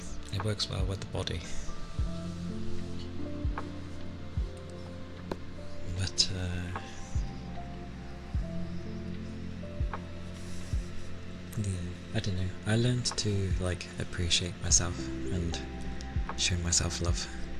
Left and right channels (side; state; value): both; identical; correlation 1.00